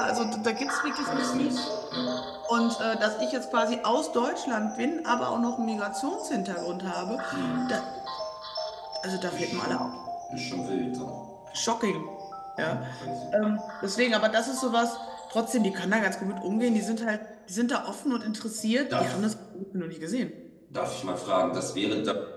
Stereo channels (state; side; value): identical; both; correlation 1.00